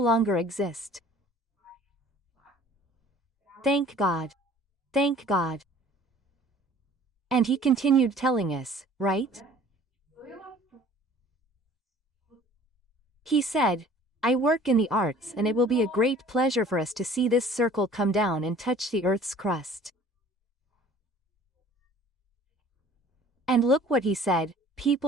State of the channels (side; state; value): both; normal; correlation 0.51